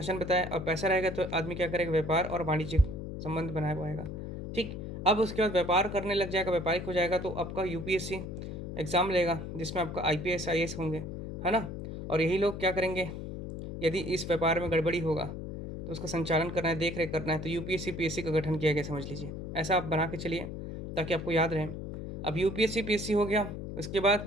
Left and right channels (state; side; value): noise; left; hum, 7 dB below the sound